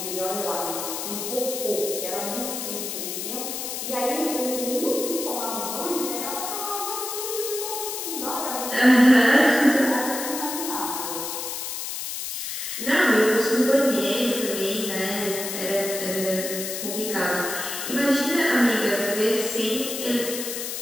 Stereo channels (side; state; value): left; noise; hiss, 5 dB below the sound